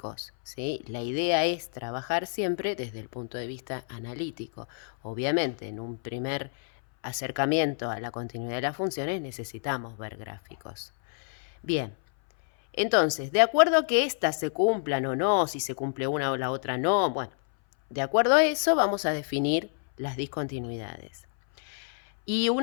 ¿sí? La idea es trabajar siempre desde el punto de vista analítico. Obviamente, en un primer acercamiento a la continuidad de las funciones necesitamos ver gráficos. Bien, entonces, de acuerdo a que éstas se cumplan o no, si se cumple una o la otra no, bueno, de acuerdo a eso vamos a definir las discontinuidades. Y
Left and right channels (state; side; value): silent; right; 59 dB below the other